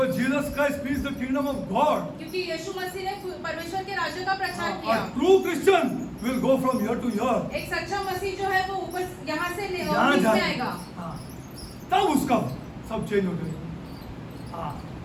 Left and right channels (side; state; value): both; identical; correlation 1.00